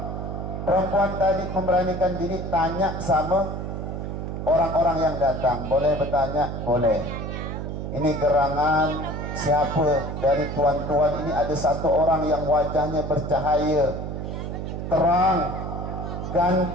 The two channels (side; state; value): right; noise; hum, 5 dB below the sound